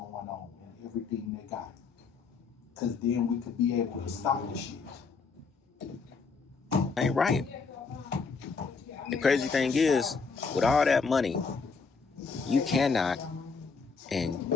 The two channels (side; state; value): right; quieter; 4.9 dB